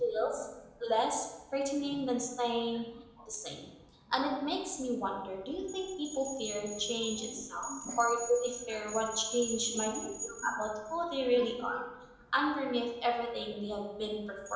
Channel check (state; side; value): identical; both; correlation 1.00